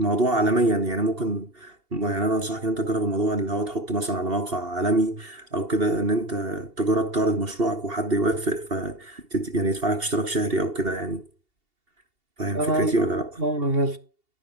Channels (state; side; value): late; left; 2.8 ms